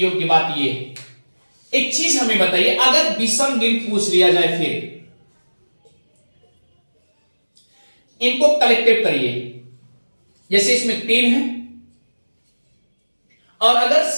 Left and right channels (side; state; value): both; inverted; correlation -1.00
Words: बात यह है, एक चीज हमें बताइए, अगर विषम दिन पूछ लिया जाए फिर इनको कलेक्टिव करिए। जैसे इसमें 3 है, और अगर